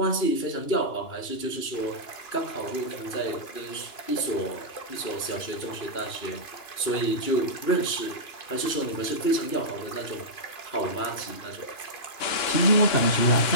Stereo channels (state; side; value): late; right; 2.9 ms